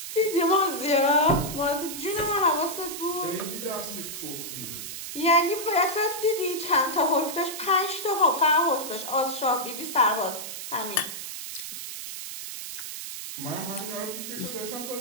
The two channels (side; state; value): right; noise; hiss, 8 dB below the sound